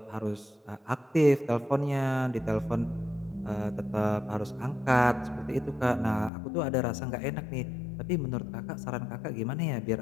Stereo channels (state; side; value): drops out; right; at 6.3 s